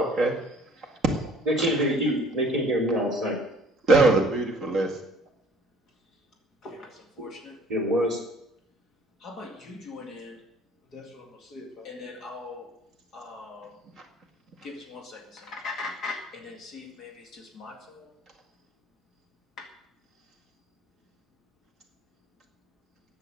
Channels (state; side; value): normal; both; correlation 0.55